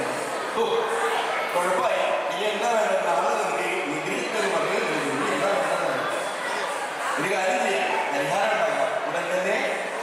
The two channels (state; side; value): identical; both; correlation 1.00